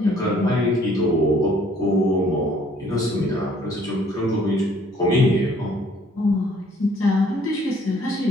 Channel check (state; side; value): normal; both; correlation 0.60